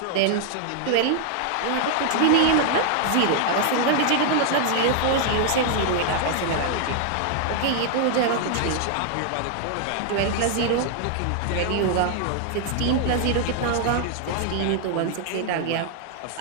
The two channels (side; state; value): both; different; correlation 0.00